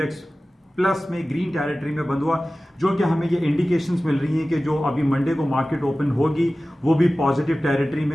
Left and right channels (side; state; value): both; normal; correlation 0.96